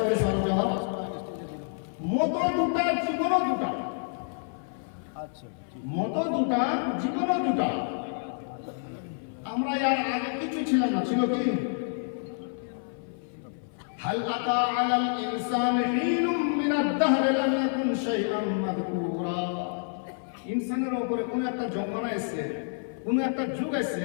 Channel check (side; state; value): right; silent; 55 dB below the other